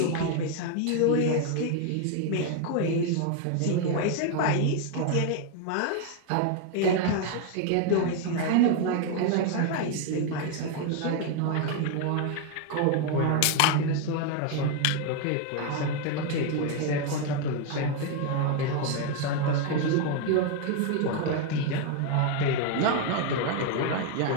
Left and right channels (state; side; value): different; both; correlation 0.01